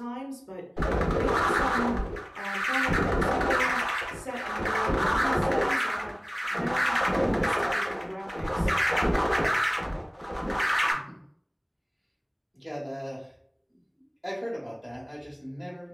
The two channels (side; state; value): both; identical; correlation 1.00